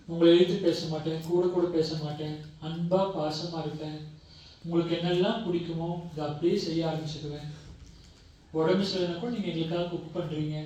உங்களை எழுத்து பேச மாட்டேன், கூட பேச மாட்டேன், அன்பா பாசமாக இருப்பேன். உங்களுக்கு என்னெல்லாம் பிடிக்குமோ இதை அப்படியே செய்ய ஆரம்பிச்சுக்குவேன். உடம்பு சரியில்லைனா கூட நீங்கள் எங்களுக்காக குக் பண்ணுறீங்க.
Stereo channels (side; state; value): both; identical; correlation 1.00